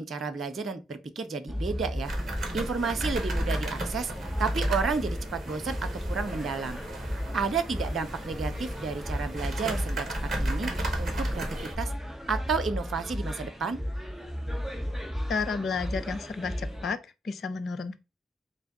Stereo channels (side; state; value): both; normal; correlation 0.76